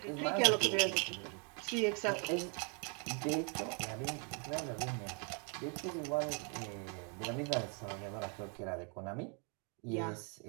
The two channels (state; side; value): quieter; left; 37.3 dB